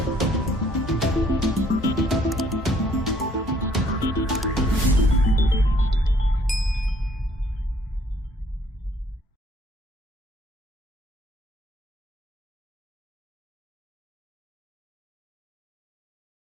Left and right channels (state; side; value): normal; both; correlation 0.63